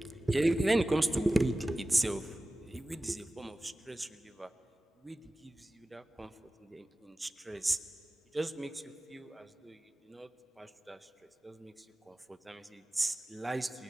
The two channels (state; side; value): normal; both; correlation 0.96